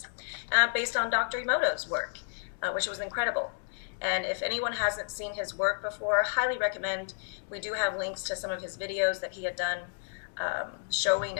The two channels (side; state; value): right; silent; digital silence